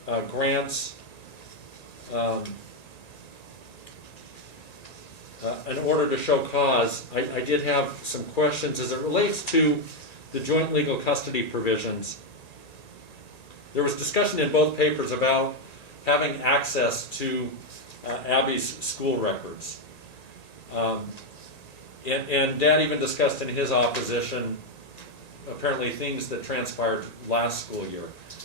grants an order to show cause, I did have some questions as it relates to the joint legal custody provisions. There was discussion in both papers about having access to Abby's school records. And Dad even discussed in his opposition apparently things that transpired last school year.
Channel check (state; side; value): late; right; 1.9 ms